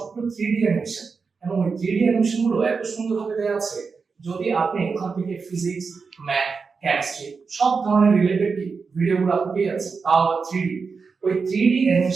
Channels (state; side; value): quieter; left; 5.0 dB